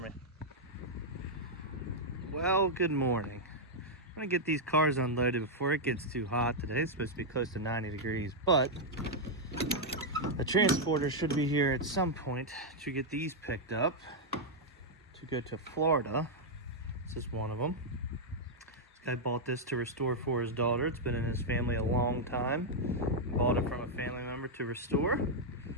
me. Well, good morning. I'm gonna get these cars unloaded before it gets too hot today. It's supposed to be close to 90 degrees, but the transporter should be here at some point to get these picked up to go to Florida. This is one of them. This guy bought this to restore for his daughter. It's been in his family a long time. Bought it from a family member to restore.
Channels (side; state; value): both; normal; correlation -0.03